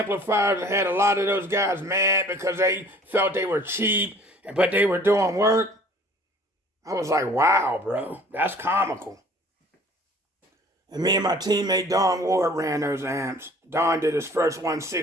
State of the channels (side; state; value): both; normal; correlation 0.51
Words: and had a lot of those guys mad because they felt they were cheap, but they were doing work. I was like, wow, bro, that's comical. And me and my teammate Don Ward ran those amps. Don did his first